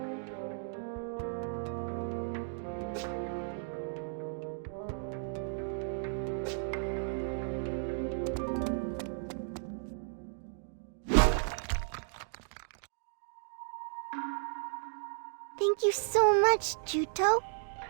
Thank you so much, Juto.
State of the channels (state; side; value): silent; left; digital silence